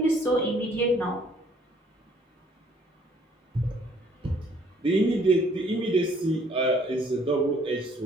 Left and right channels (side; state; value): both; normal; correlation 0.61